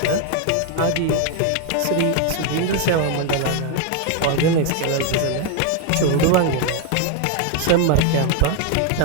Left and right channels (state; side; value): different; both; correlation 0.01